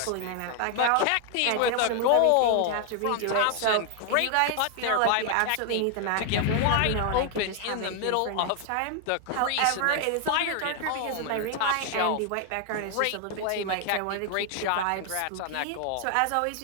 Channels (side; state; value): both; different; correlation 0.00